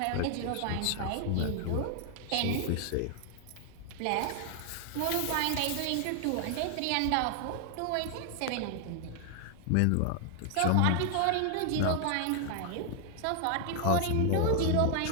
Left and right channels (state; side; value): different; both; correlation 0.00